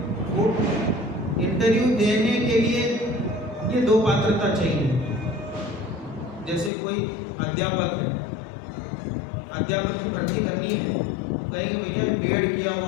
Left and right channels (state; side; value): drops out; right; at 6.7 s